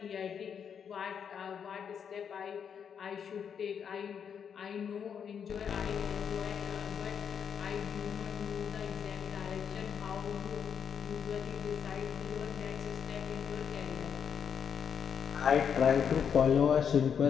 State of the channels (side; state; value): right; quieter; 7.5 dB